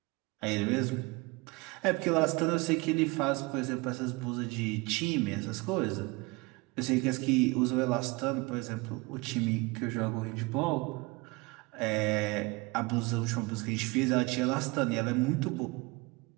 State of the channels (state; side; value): quieter; left; 25.2 dB